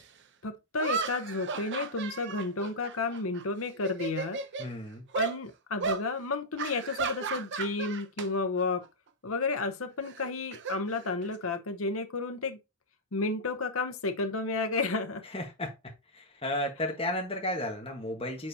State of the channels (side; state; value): both; normal; correlation -0.08